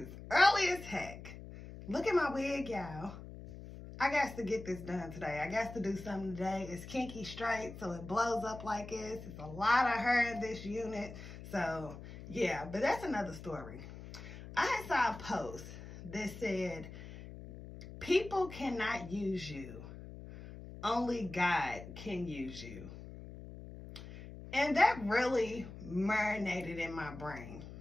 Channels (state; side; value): noise; left; hum, 13 dB below the sound